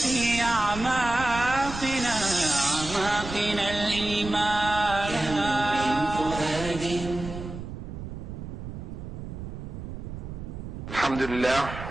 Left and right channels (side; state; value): right; noise; rumble, 9 dB below the sound